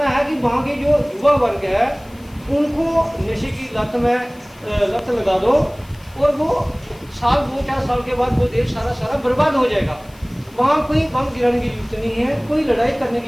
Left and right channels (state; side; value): noise; left; hiss, 27 dB below the sound